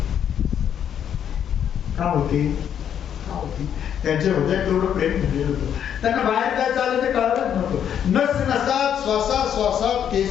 का होते, का होते? त्यांच्या हृदयात तेवढं प्रेम भरलेलं होतं. त्यांना बाहेर काय चाललं ते कळतच नव्हतं. नस नसात, श्वासात श्वासात,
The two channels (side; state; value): right; quieter; 9.1 dB